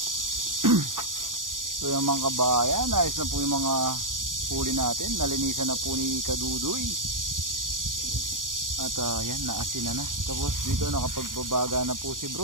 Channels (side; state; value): left; late; 0.89 ms